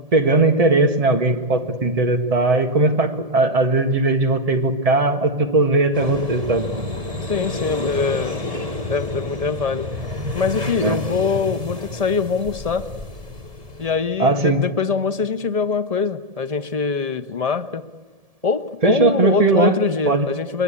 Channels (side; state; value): left; late; 1.7 ms